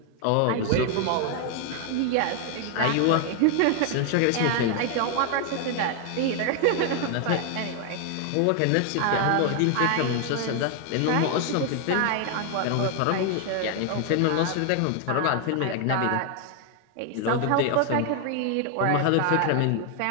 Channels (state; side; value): different; both; correlation 0.00